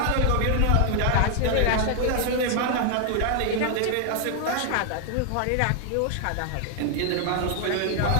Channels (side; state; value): both; different; correlation 0.00